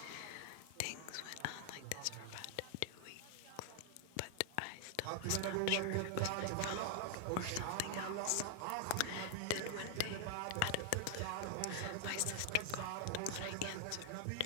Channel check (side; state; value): both; different; correlation 0.00